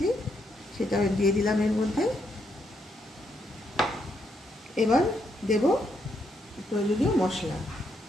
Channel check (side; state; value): both; normal; correlation 0.77